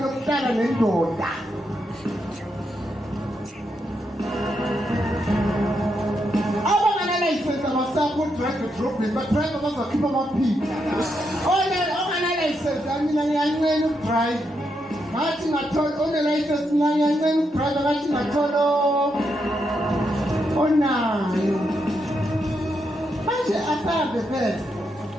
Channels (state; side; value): normal; both; correlation 0.81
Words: lokuhlala nendoda. Abangana-license abasapho drive edrobheni, badrive bazokhipha amaphiko. Ongana-license, mina ngiyancela ukudrive. Ngathi ngathola one-license, mina ngiyancela ukudrive, ngathi ngathola onayo. Manje asabe phela.